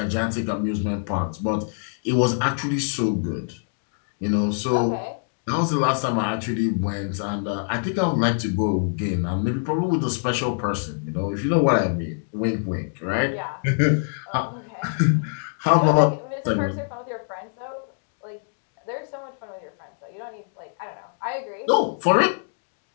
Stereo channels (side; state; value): right; silent; digital silence